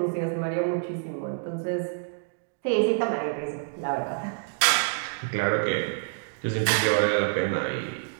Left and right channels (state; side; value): silent; left; digital silence